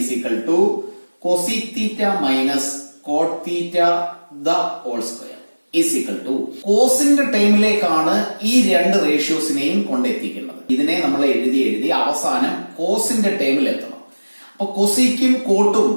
equal to cosec theta minus cot theta the whole square is equal to കോസിന്റെ ടൈമിലേക്കാണ് ഈ രണ്ട് റേഷ്യോസിനെയും കൊണ്ടെത്തിക്കുന്നത്. ഇതിനെ നമ്മൾ എഴുതി അവസാനം കോസിന്റെ ടൈമിൽ എത്തണം. അപ്പൊ കൊസീക്കും കോട്ടും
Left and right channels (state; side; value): inverted; both; correlation -1.00